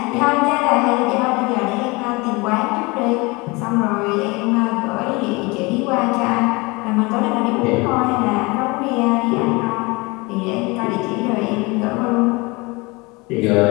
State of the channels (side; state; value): right; quieter; 25.4 dB